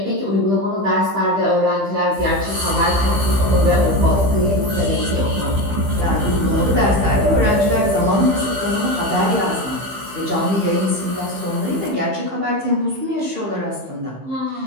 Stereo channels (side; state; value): left; late; 15 ms